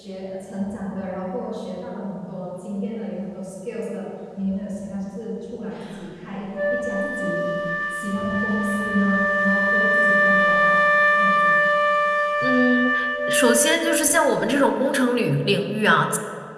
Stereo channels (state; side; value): identical; both; correlation 1.00